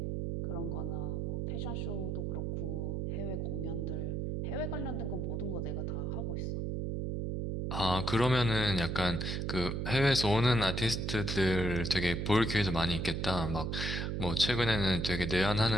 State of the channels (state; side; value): noise; right; hum, 1 dB below the sound